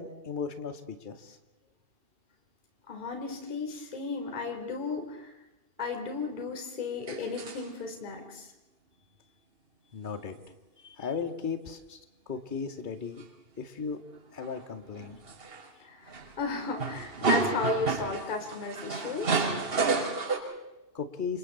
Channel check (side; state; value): left; late; 2.8 ms